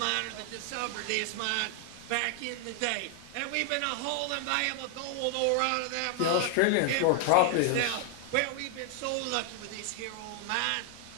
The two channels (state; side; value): different; both; correlation 0.00